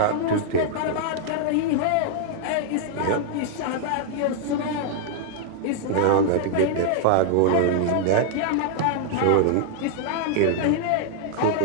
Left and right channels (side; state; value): both; different; correlation -0.01